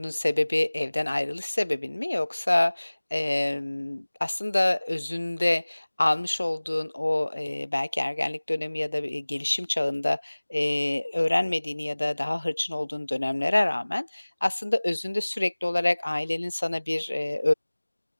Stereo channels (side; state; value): both; inverted; correlation -1.00